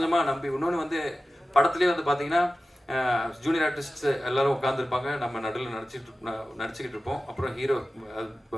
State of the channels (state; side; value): normal; both; correlation 0.95